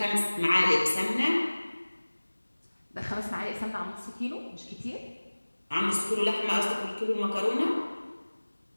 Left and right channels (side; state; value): both; inverted; correlation -1.00